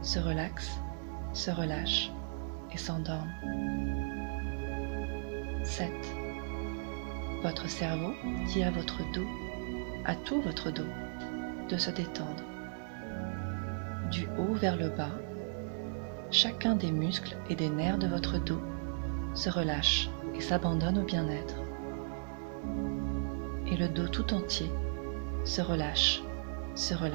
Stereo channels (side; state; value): left; silent; digital silence